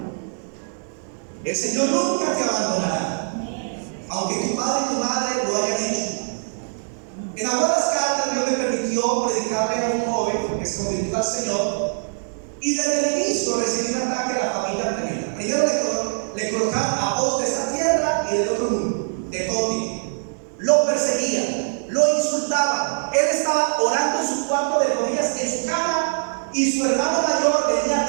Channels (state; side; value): silent; left; digital silence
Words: El Señor nunca te abandonará, aunque tu padre y tu madre lo hayan hecho. En algunas cartas Dios me permitió predicarle a un joven que se convirtió al Señor, y desde el inicio recibí un ataque a la familia tremenda. Primero le colocaron a voz de esta tierra y del otro mundo, de todo tipo. Lo perseguían, lo insultaban. Él estaba orando en su cuarto de rodillas en su cama, y su hermano mayor venía